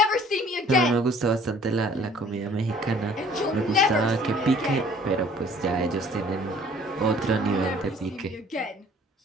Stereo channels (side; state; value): both; normal; correlation 0.54